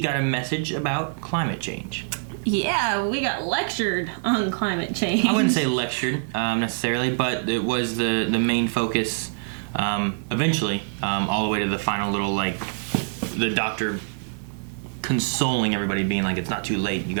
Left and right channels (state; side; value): silent; left; 59 dB below the other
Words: a message about climate change. Yeah, we got lectured on climate change. I wouldn't say lectured necessarily, but it was the main focus eventually, all the way to the final little, the doctor consoling everybody, being like, it's not too late, you